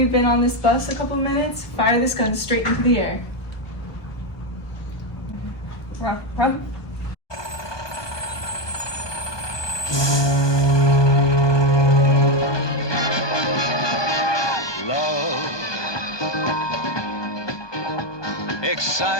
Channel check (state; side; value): late; right; 1.2 ms